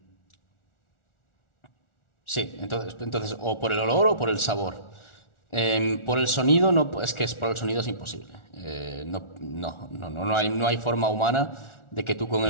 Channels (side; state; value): right; late; 1.4 ms